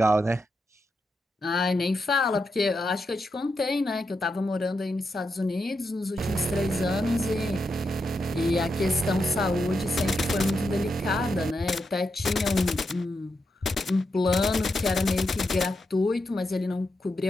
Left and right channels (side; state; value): both; normal; correlation 0.85